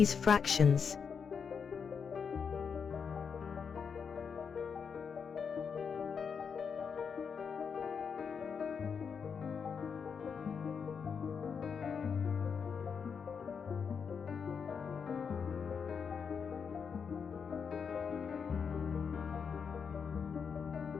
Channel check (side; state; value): right; quieter; 6.3 dB